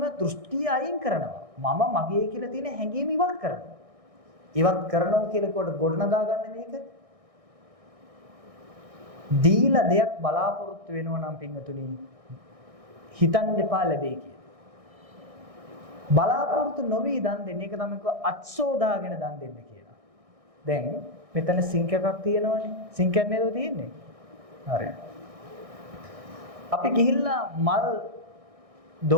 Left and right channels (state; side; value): late; left; 1.6 ms